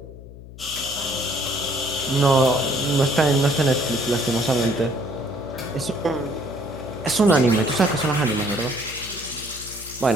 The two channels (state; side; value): noise; left; hum, 16 dB below the sound